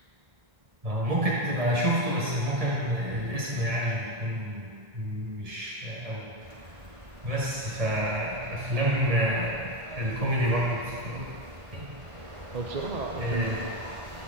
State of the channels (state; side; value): late; left; 1.7 ms